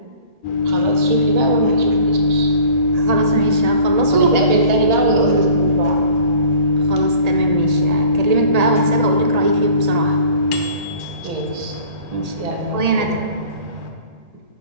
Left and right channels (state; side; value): late; left; 1.8 ms